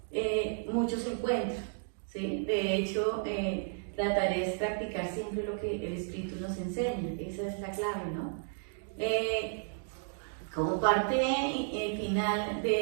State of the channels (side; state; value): left; silent; digital silence